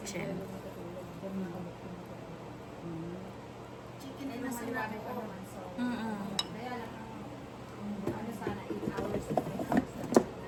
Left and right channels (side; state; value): both; identical; correlation 1.00